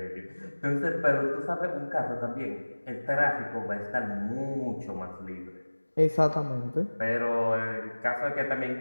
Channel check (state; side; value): inverted; both; correlation -1.00